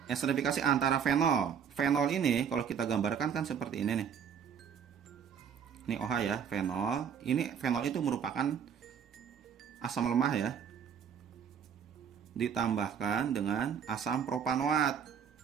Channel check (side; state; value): left; quieter; 7.6 dB